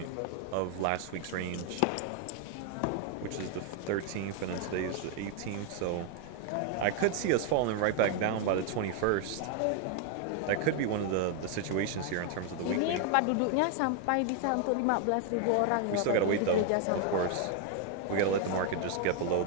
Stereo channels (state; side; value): different; both; correlation 0.00